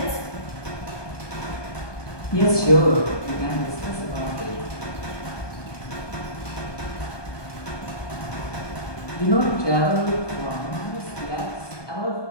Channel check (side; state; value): right; late; 1.2 ms